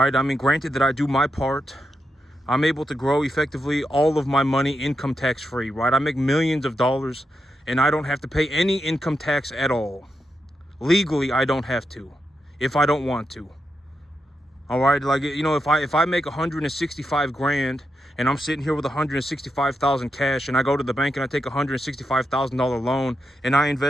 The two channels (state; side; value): normal; both; correlation 0.85